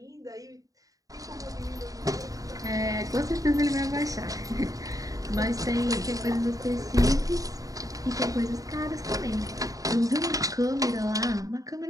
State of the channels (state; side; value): late; left; 0.17 ms